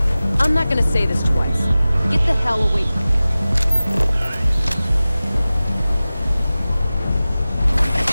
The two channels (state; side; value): inverted; both; correlation -0.97